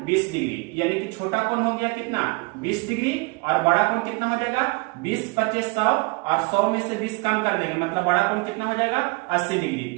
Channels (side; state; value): left; quieter; 27.6 dB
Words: 20 डिग्री, यानी कि छोटा कोण हो गया कितना 20 डिग्री और बड़ा कोण कितना हो जाएगा 20 25 100, और 100 में से 20 कम कर देंगे, मतलब बड़ा कोण कितना हो जाएगा 80 डिग्री।